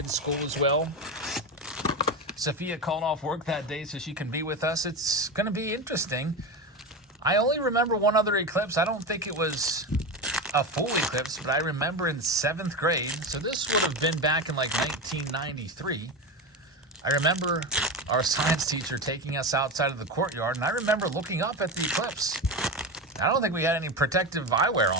school as well. Sophia called off work that day so she can be with us. It's going to be interesting. I only remember one other eclipse. I don't think it was a full eclipse, but I remember in 7th grade, so this would have been back in like 1993. I remember our science teacher taking us outside of the courtyard, and I remember looking up at the eclipse. I don't think we had any protective eyewear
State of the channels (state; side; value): normal; both; correlation 0.19